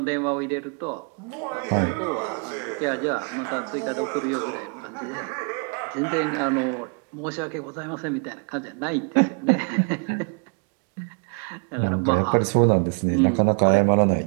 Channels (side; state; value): left; quieter; 38.0 dB